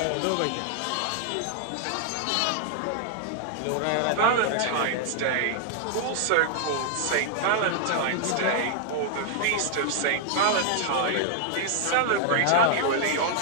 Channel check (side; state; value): both; different; correlation 0.00